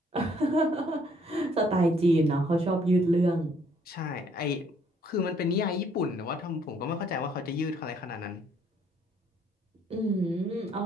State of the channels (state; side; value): normal; both; correlation 0.65